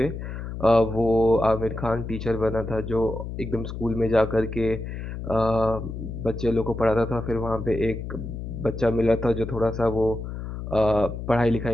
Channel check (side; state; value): left; noise; hum, 7 dB below the sound